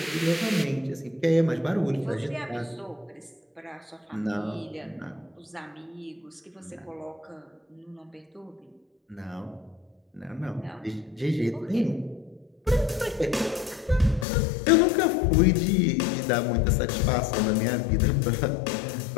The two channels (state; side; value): drops out; right; at 14.2 s